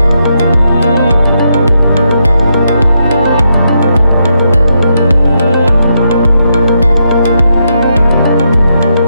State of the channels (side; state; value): both; inverted; correlation -0.81